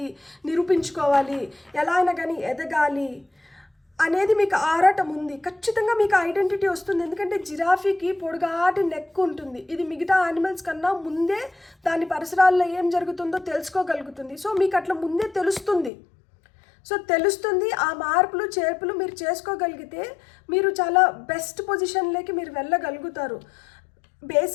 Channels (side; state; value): right; drops out; at 15.9 s